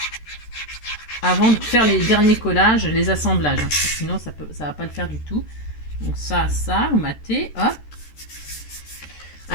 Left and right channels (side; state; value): right; late; 13 ms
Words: avant de faire les derniers collages, les assemblages. Hein, sinon ça va pas le faire du tout. Donc ça, vous matez, hop.